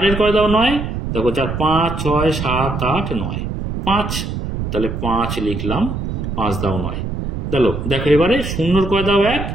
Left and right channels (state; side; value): noise; right; rumble, 4 dB below the sound